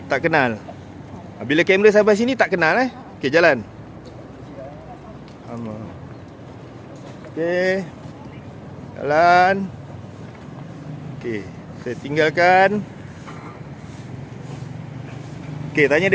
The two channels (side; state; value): both; identical; correlation 1.00